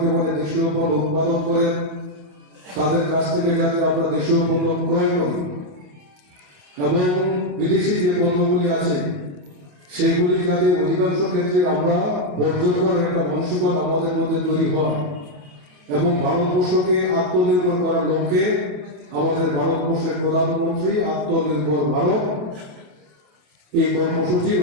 দেশীয় পণ্য উৎপাদন করেন, তাদের কাছ থেকে যাতে আমরা দেশীয় পণ্য ক্রয় করি এবং বিদেশি যে পণ্যগুলি আছে সেগুলি যাতে অধিকাংশ ক্ষেত্রে আমরা বর্জন করার একটা মানসিকতা আমাদের মধ্যে তৈরি হয় এবং ভারতবর্ষকে আত্মনির্ভর করার লক্ষ্যে আমাদের ভারতবর্ষের প্রধানমন্ত্রী আত্মনির্ভর ভারত এই কর্মসূচি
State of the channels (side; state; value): left; late; 27 ms